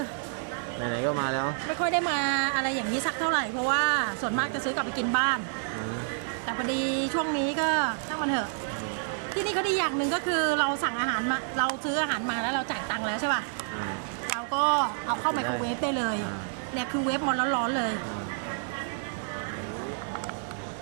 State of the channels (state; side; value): silent; left; digital silence